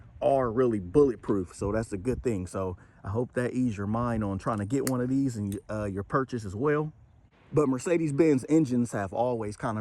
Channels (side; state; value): both; identical; correlation 1.00